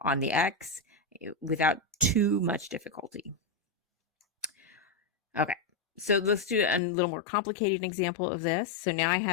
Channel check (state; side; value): drops out; right; at 6.8 s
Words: the x without too much difficulty. Okay, so let's do a little more complicated example of this. So now I